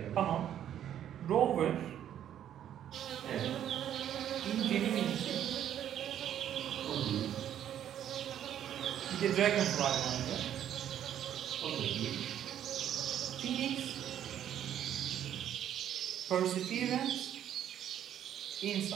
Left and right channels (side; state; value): left; quieter; 10.5 dB